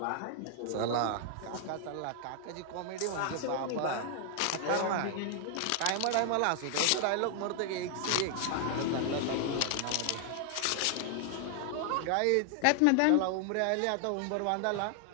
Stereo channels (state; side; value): different; both; correlation 0.00